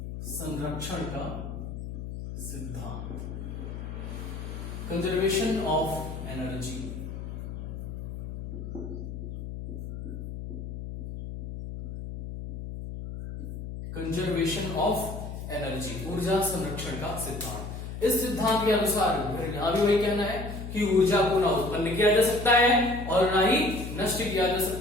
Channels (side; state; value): left; noise; hum, 8 dB below the sound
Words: संरक्षण का सिद्धांत, conservation of energy. Conservation of energy, ऊर्जा संरक्षण का सिद्धांत। इस सिद्धांत के अनुसार यहां भी वही कहना है कि ऊर्जा को ना उत्पन्न किया जा सकता है और ना ही नष्ट किया जा